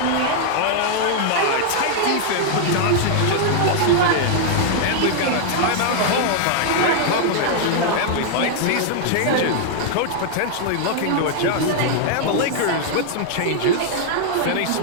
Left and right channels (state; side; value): different; both; correlation 0.00